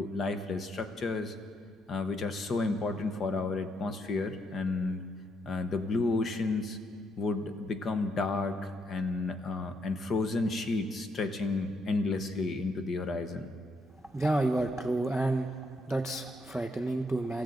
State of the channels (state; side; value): normal; both; correlation 0.75